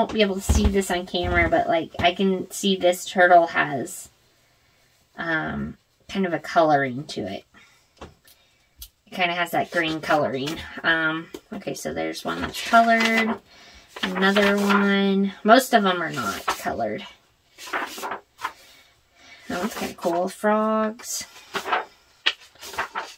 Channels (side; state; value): both; identical; correlation 1.00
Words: be able to see this on camera, but like I can see this turtle has kind of a coloring to it. It kind of has that green coloring. Okay, so there's one that's colored. Another one. Most of them are not colored. That one's kind of cool. Frogs.